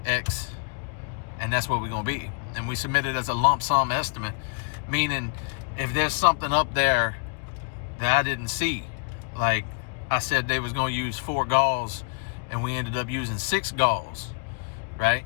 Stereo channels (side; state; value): right; quieter; 38.3 dB